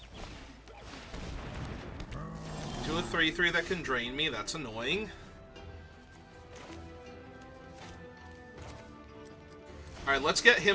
To a 3/3 that can drain me, that's annoying. Alright, let's get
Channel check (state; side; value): identical; both; correlation 1.00